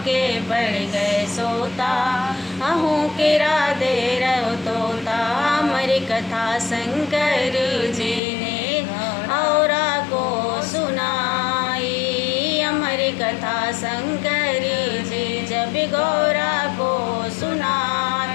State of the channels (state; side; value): drops out; right; at 8.2 s